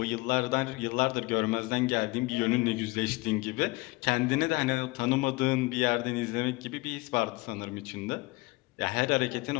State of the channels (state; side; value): quieter; right; 23.5 dB